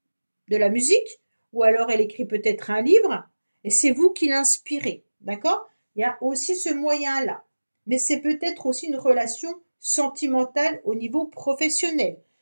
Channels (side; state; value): both; inverted; correlation -1.00